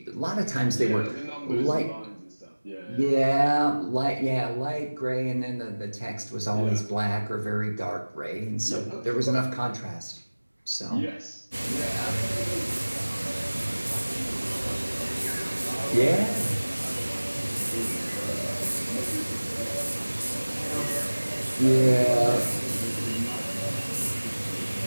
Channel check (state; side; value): inverted; both; correlation -1.00